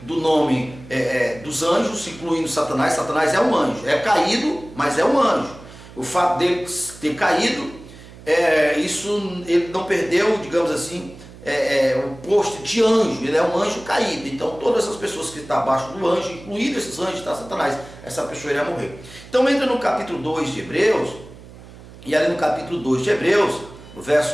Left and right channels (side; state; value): right; noise; hum, 18 dB below the sound